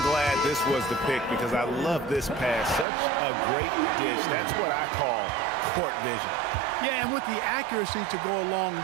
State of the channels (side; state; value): left; drops out; at 2.9 s